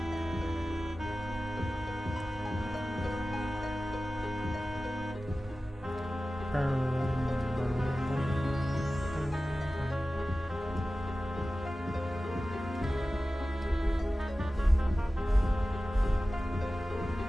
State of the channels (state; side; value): normal; both; correlation 0.95